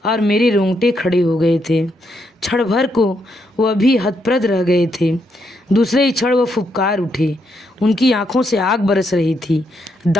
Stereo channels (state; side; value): normal; both; correlation 0.78